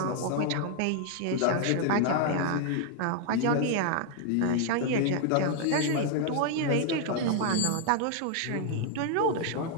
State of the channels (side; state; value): both; different; correlation 0.00